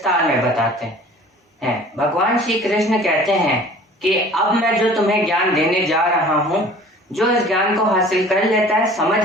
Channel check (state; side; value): normal; both; correlation 0.47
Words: में बताते हैं। भगवान श्री कृष्ण कहते हैं कि अब मैं जो तुम्हें ज्ञान देने जा रहा हूँ, जो इस ज्ञान को हासिल कर लेता है,